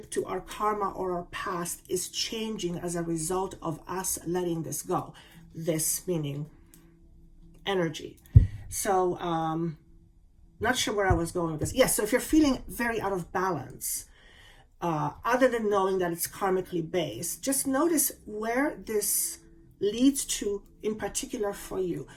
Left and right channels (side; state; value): both; identical; correlation 1.00